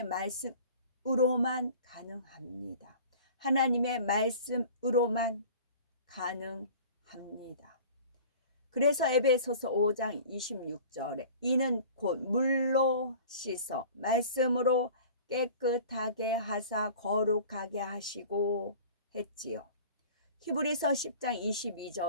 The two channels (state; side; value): inverted; both; correlation -0.43